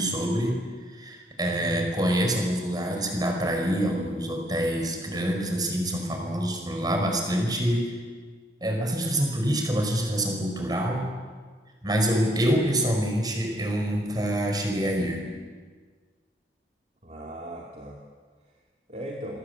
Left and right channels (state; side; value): normal; both; correlation 0.69